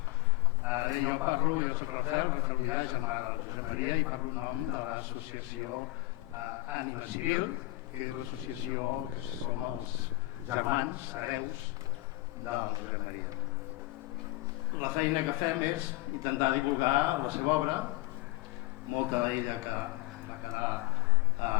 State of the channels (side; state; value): right; quieter; 19.8 dB